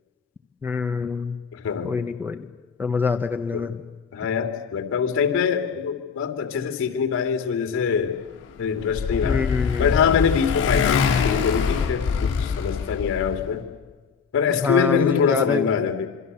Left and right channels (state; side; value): quieter; right; 6.1 dB